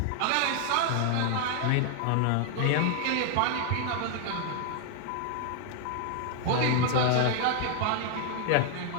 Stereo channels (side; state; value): both; different; correlation 0.00